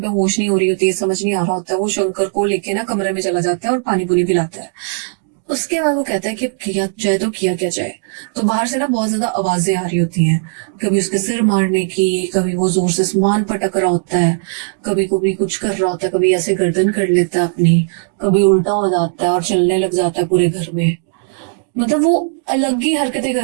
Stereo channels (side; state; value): left; silent; digital silence